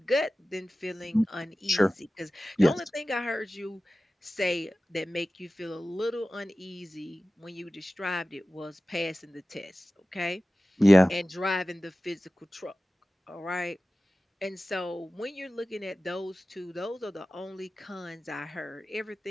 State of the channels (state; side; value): normal; both; correlation 0.96